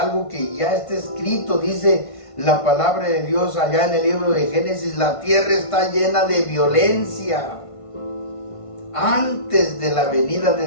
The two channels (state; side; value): late; right; 1.5 ms